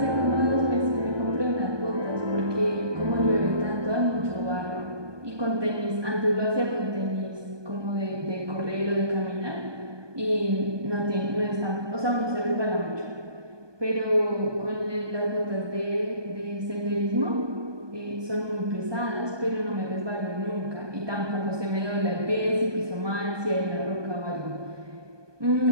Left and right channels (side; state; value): left; late; 1.2 ms